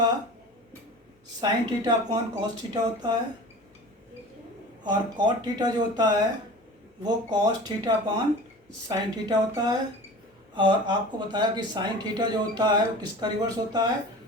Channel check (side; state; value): both; normal; correlation 0.38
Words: sine theta upon cos theta होता है, और कॉट थीटा जो होता है वो cos theta upon sine theta होता है। और आपको बताया कि साइन थीटा जो होता है वो किसका रिवर्स होता है,